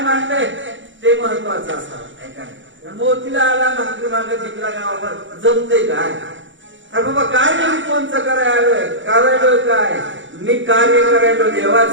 मांडलंय ते महत्वाचं असावं. मोतीला आला भाकरी मागे जिंकला गावावर जमतंय काय? अरे बाबा काय नाही, कोणचं करायलोय काय? मी कार्य करायलो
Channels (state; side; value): late; left; 0.55 ms